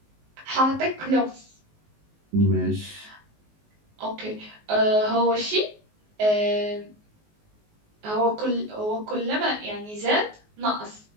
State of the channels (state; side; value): late; left; 19 ms